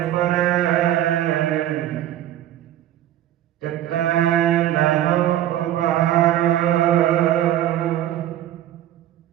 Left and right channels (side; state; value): left; quieter; 12.4 dB